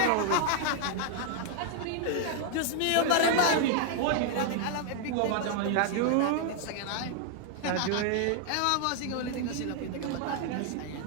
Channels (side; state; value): both; different; correlation 0.00